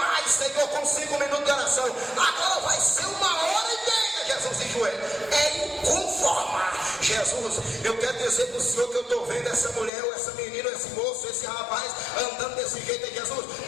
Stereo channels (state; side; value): drops out; right; at 9.9 s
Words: Senhor, com 5 minutos de oração. Agora vai ser 1 hora e meia, Jesus, em joelho. É inconformar. Jesus, eu quero dizer para o Senhor que eu estou vendo essa mulher, ou essa menina, ou esse moço, esse rapaz andando desse jeito aí, Jesus,